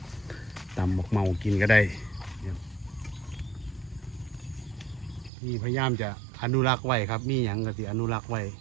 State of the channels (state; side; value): drops out; left; at 5.3 s